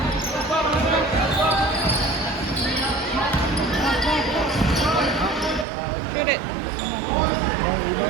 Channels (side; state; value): left; drops out; at 5.7 s